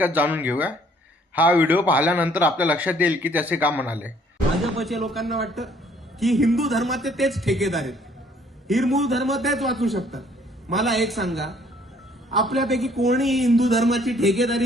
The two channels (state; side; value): normal; both; correlation 0.61